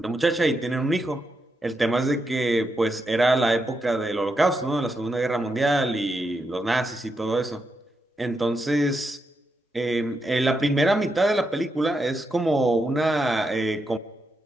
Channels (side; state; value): both; normal; correlation 0.84